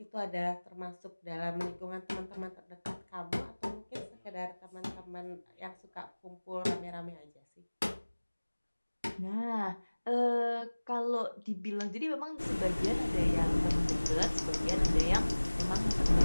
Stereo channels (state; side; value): inverted; both; correlation -1.00